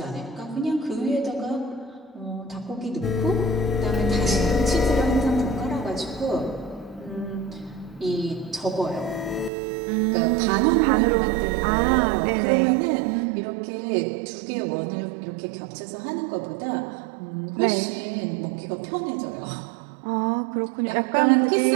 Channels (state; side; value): drops out; left; at 9.5 s